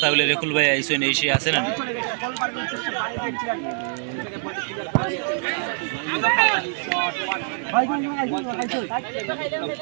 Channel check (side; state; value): left; silent; 61 dB below the other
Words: তাহলে রেকুল ভাই আইসো এসে আছে না